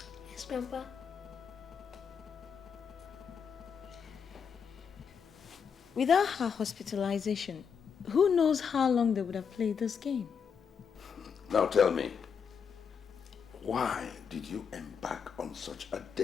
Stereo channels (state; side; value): quieter; right; 6.7 dB